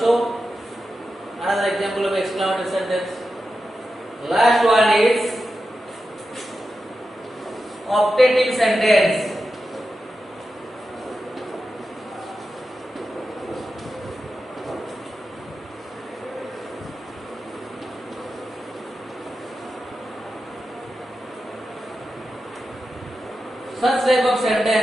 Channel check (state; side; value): normal; both; correlation 0.91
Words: another example of exclamatory sentence. Last one is optative sentence. Such type of